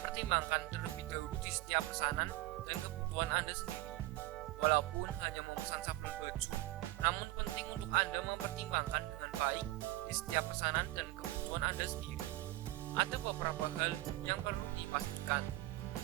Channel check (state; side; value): quieter; left; 17.9 dB